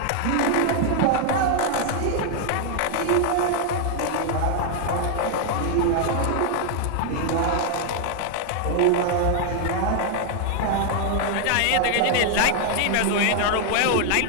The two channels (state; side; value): different; both; correlation 0.00